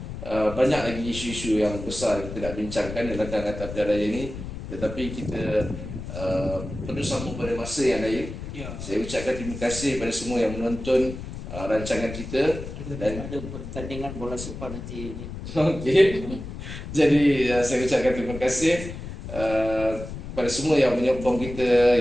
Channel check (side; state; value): left; noise; rumble, 9 dB below the sound